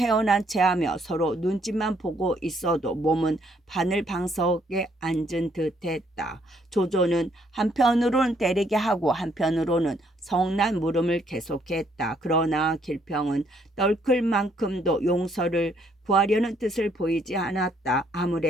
체하며 서로 눈짓만 보고 있어도 몸은 바늘방석에 앉은 듯했다. 조조는 한편으로는 때리게 하고 한편으로는 성난 물음을 계속했다. 그러나 길평은 떨클 만큼도 용서를 구하려는 뜻을 보이지 않았다.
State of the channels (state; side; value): normal; both; correlation 0.68